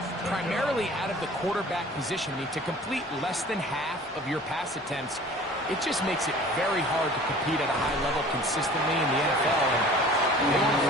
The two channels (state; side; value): normal; both; correlation 0.46